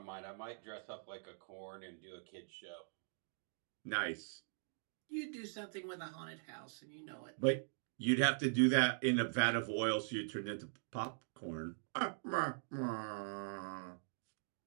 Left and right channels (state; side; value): silent; left; digital silence